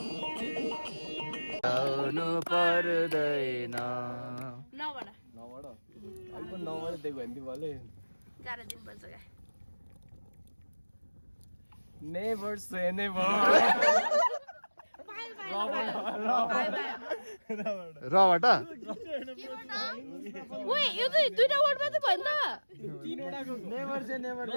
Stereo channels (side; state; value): both; inverted; correlation -1.00